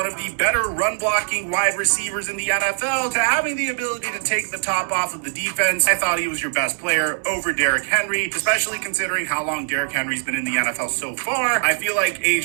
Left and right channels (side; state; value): left; silent; 62 dB below the other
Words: of the better run-blocking wide receivers in the NFL to having the ability to take the top off of the defense, I thought he was your best player over Derrick Henry, especially considering how long Derrick Henry's been in the NFL so far. I feel like